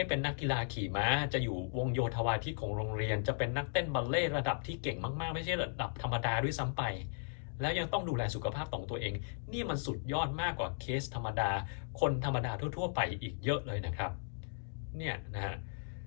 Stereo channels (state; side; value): silent; right; digital silence